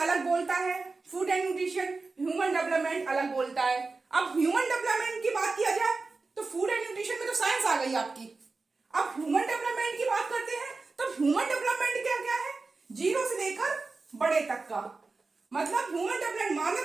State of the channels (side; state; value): left; quieter; 3.9 dB